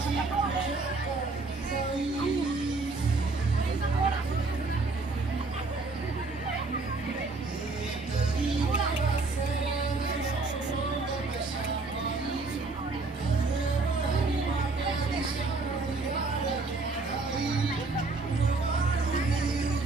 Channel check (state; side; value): quieter; left; 3.6 dB